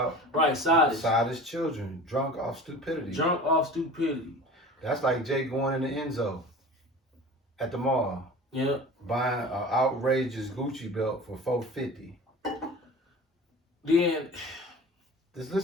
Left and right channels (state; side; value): normal; both; correlation 0.38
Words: Right, sottish. Sottish children, drunk off stupidity. Drunk off stupidity. That's like Jake going in the Enzo at the mall. Yeah. Buying an outrageous Gucci belt for $450. Then, just